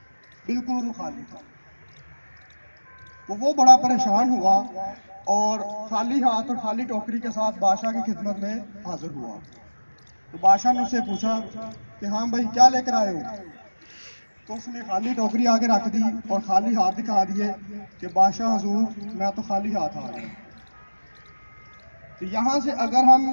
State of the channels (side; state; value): both; inverted; correlation -1.00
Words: بالکل وہ خالی تھا۔ تو وہ بڑا پریشان ہوا اور خالی ہاتھ اور خالی ٹوکری کے ساتھ بادشاہ کی خدمت میں حاضر ہوا۔ تو بادشاہ نے اس سے پوچھا کہ ہاں بھائی، کیا لے کر آئے ہو؟ تو اس نے خالی ٹوکری آگے رکھ دی اور خالی ہاتھ دکھا دیے کہ بادشاہ حضور، میں تو خالی ہاتھ آ گیا۔ تو یہاں سے اگر ہم